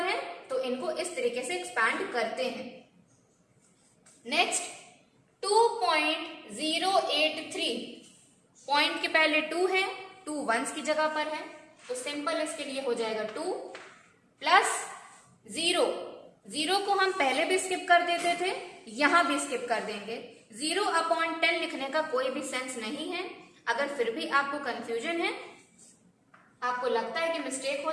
हैं, तो इनको इस तरीके से एक्सपैंड करते हैं। नेक्स्ट 2.083, पॉइंट के पहले 2 है, 2 1's की जगह पर है, तो सिंपल इसके लिए हो जाएगा 2 प्लस 0, 0 को हम पहले भी स्किप कर देते थे, यहां भी स्किप कर देंगे। 0/10 लिखने का कोई भी सेंस नहीं है। अगर फिर भी आपको कंफ्यूजन है, आपको लगता है कि मिस्टेक हो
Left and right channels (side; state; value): both; identical; correlation 1.00